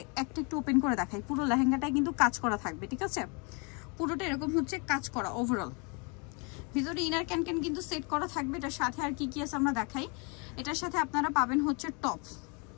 একটা একটু ওপেন করে দেখাই। পুরো লেহেঙ্গাটাই কিন্তু কাজ করা থাকবে, ঠিক আছে? পুরোটা এরকম হচ্ছে কাজ করা ওভারঅল। ভিতরে ইনার ক্যান কিন্তু সেট করা থাকবে। এটার সাথে আর কি কি আছে আমরা দেখাই। এটার সাথে আপনারা পাবেন হচ্ছে টপ।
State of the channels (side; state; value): right; quieter; 33.2 dB